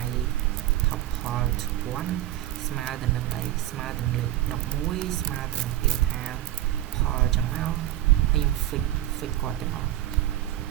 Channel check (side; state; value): left; quieter; 13.9 dB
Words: tuple 1ស្មើទៅនឹងអីស្មើទៅនឹងលេខ11ស្មើទៅនឹងពាក្យថា pol ចឹងមកហើយខ្ញុំ fix គាត់ទាំងអស់